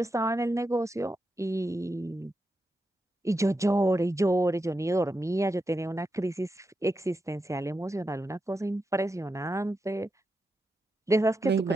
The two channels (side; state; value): both; normal; correlation 0.87